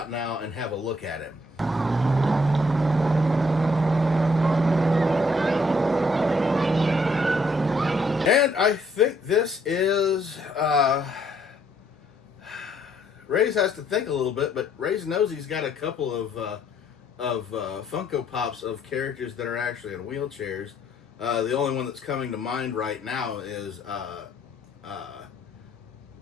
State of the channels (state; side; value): normal; both; correlation 0.68